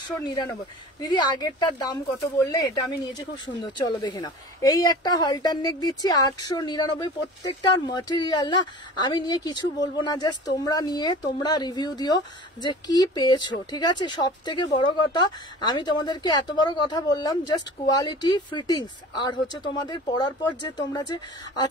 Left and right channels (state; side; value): normal; both; correlation 0.40